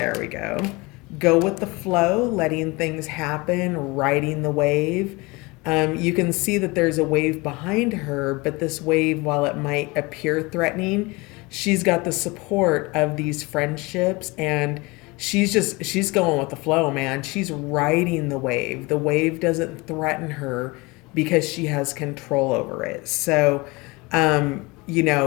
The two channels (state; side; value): quieter; right; 24.7 dB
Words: we go. Go with the flow, letting things happen, riding the wave. You can see that there's a wave behind her, but this wave, while it might appear threatening, she's got the support of these friendships, and she's going with the flow, man. She's riding the wave. The wave doesn't threaten her because she has control over it. So, um, you